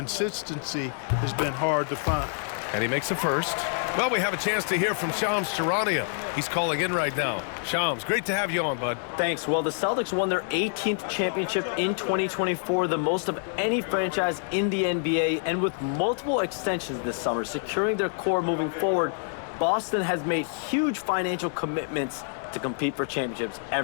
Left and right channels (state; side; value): silent; right; 60 dB below the other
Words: has been hard to find. And he makes the first. Well, we have a chance to hear from Shams Charania. He's calling in right now. Shams, great to have you on, bud. Thanks. Well, the Celtics won their 18th championship in 2024, the most of any franchise in the NBA, and with multiple extensions this summer, securing their core moving forward, Boston has made huge financial commitments to compete for championships